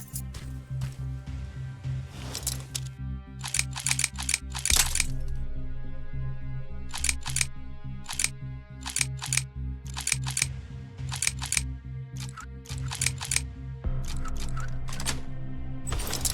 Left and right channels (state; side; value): identical; both; correlation 1.00